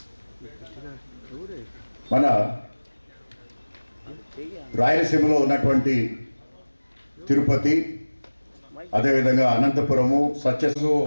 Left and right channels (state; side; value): inverted; both; correlation -1.00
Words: మన రాయలసీమలో ఉన్నటువంటి తిరుపతి, అదేవిధంగా Anantapuramu, So